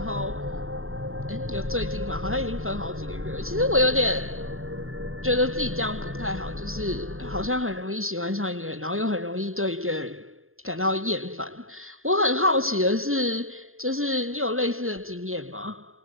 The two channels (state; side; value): late; left; 0.61 ms